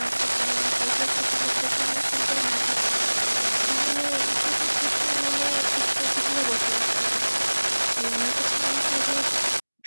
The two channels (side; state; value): both; inverted; correlation -1.00